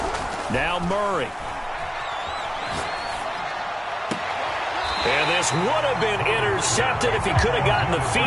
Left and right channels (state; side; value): identical; both; correlation 1.00